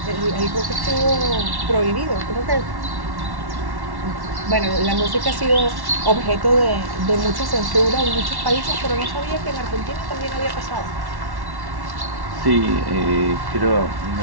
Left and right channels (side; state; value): left; late; 1.1 ms